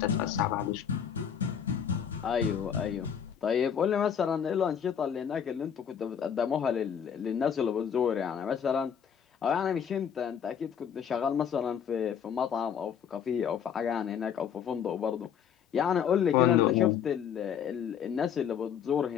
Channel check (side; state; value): right; quieter; 8.0 dB